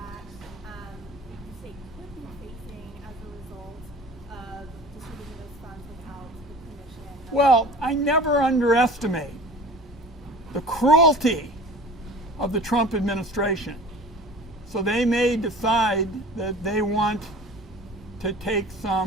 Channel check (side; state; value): both; normal; correlation 0.41